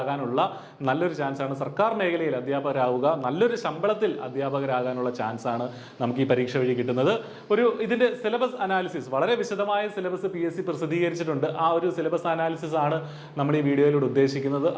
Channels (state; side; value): identical; both; correlation 1.00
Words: നല്ലൊരു ചാൻസാണ്. സർക്കാർ മേഖലയിൽ അധ്യാപകരാവുക, നല്ലൊരു ശമ്പളത്തിൽ അധ്യാപകരാകാനുള്ള ചാൻസാണ് നമുക്ക് ഈ പരീക്ഷ വഴി കിട്ടുന്നത്. ഇതിന്റെ സിലബസ് അനാലിസിസ്, വളരെ വിശദമായ സിലബസ് PSC പ്രസിദ്ധീകരിച്ചിട്ടുണ്ട്. ആ ഒരു സിലബസ് അനാലിസിസ് ആണ് നമ്മൾ ഈ വീഡിയോയിലൂടെ ഉദ്ദേശിക്കുന്നത്.